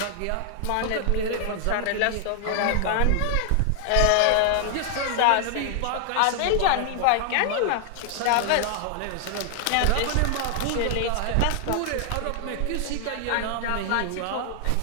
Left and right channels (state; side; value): different; both; correlation 0.00